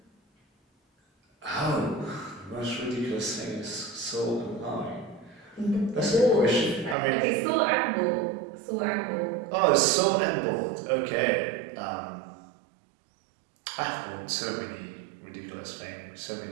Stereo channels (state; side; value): drops out; left; at 7.0 s